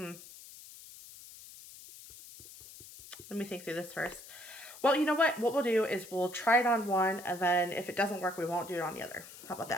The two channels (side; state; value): left; noise; hiss, 17 dB below the sound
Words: me think through this first. Well, you know what? What we'll do is we'll try it on one, and then if it doesn't work, we won't do it on the other. How about